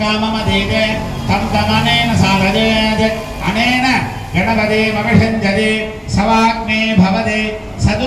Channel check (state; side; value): identical; both; correlation 1.00